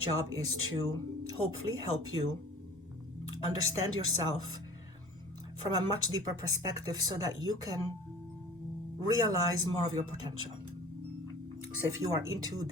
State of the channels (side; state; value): both; normal; correlation 0.44